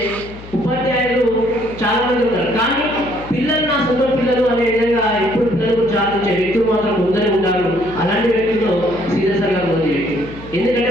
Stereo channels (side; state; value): left; noise; hum, 16 dB below the sound